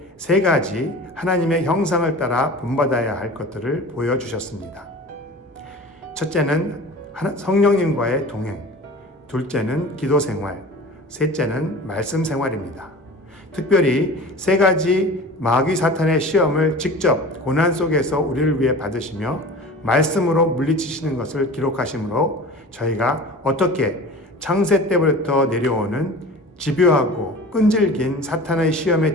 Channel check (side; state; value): both; normal; correlation 0.38